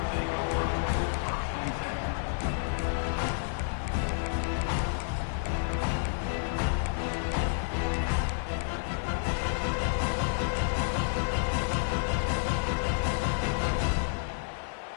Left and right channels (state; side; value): silent; right; digital silence